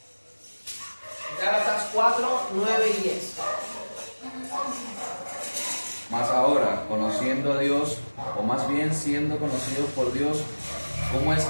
Gálatas 4, 9 y 10. Mas ahora, conociendo a Dios, o más bien siendo conocidos por Dios, ¿cómo es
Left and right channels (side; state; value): both; inverted; correlation -1.00